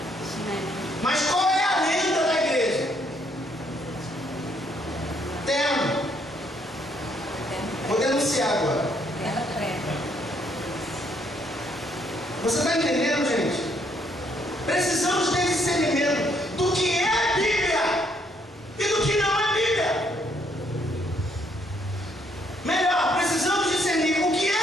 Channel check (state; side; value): normal; both; correlation 0.70